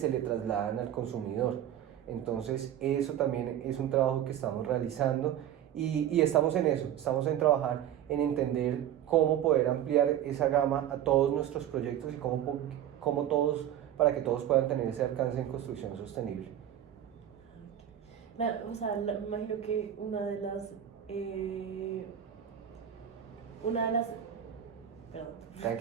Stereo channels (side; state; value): left; quieter; 10.8 dB